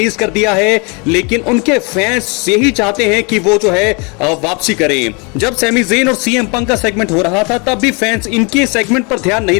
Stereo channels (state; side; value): quieter; right; 31.5 dB